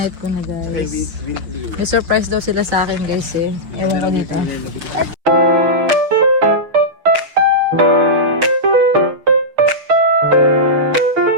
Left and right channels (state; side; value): late; left; 6.4 ms